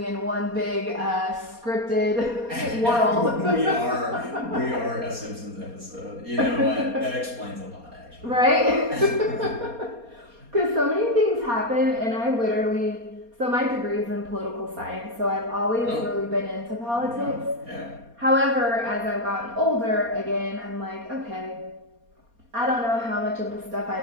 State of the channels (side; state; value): left; late; 4.2 ms